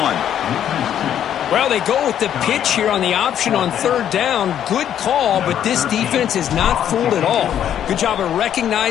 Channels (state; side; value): quieter; right; 10.0 dB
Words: Well, they go with the pitch here on the option on 3rd down. Good call, but this defense is not fooled at all. Good job of